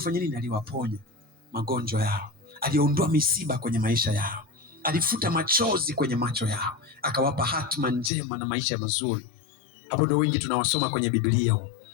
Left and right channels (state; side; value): drops out; right; at 8.1 s